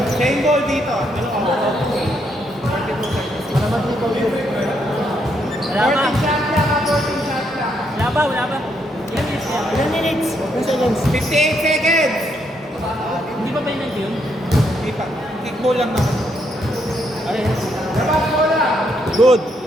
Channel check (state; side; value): normal; both; correlation 0.75